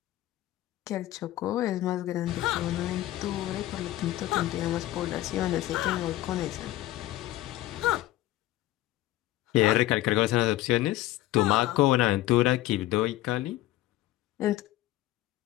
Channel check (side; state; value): right; quieter; 15.6 dB